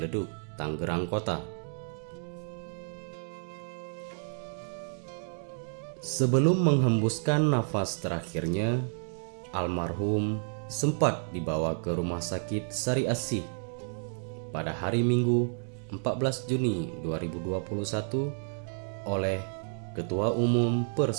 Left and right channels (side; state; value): left; silent; 57 dB below the other